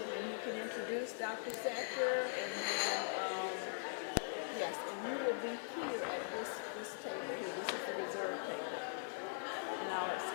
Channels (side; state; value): right; silent; digital silence